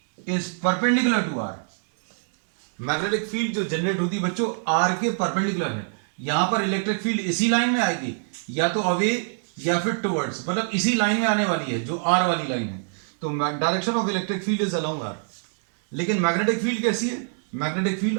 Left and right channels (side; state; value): left; silent; digital silence